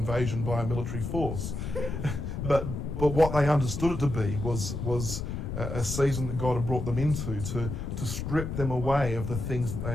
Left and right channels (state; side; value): noise; left; rumble, 4 dB below the sound